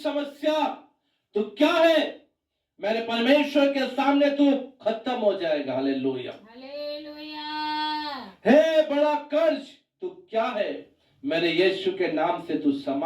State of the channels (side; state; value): both; identical; correlation 1.00